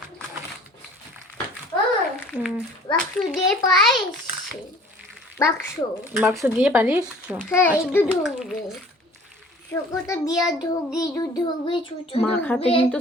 বাক্স দিয়ে পারিস? বাক্স দিয়ে পারিস? হ্যাঁ, একটু ঢুকবে চোখটা দিয়ে ঢুকবে মাখাতে কিন্তু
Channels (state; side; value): normal; both; correlation 0.50